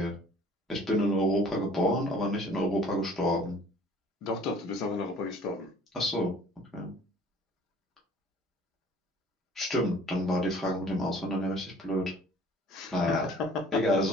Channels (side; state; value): both; normal; correlation 0.52